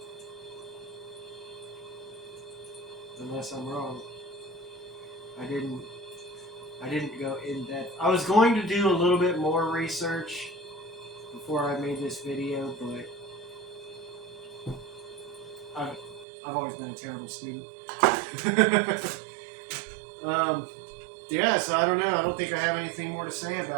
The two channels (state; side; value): drops out; left; at 16.2 s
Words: Unless I'm wrong. I didn't I didn't go in depth. I was going to do a little bit more research before I made this video, but I've always been a terrible student. Yeah, so I don't know. I don't think I have anything more to say